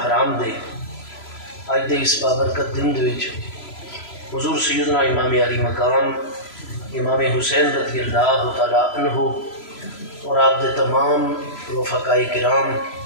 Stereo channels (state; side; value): late; right; 3.0 ms